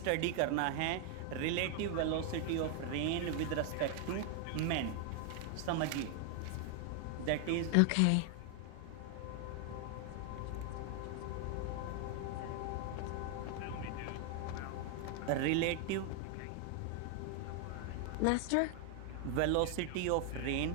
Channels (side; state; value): both; different; correlation 0.00